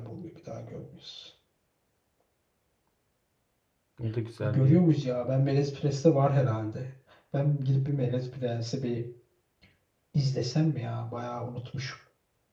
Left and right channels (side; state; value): both; identical; correlation 1.00